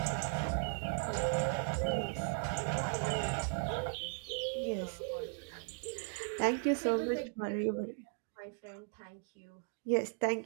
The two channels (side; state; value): left; quieter; 39.5 dB